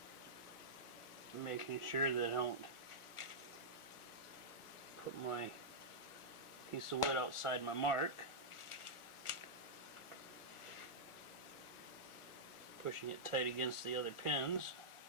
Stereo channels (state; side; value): late; right; 1.4 ms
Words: Making sure that I don't put my piece of wood outside my mark. Pushing it tight against the other pins.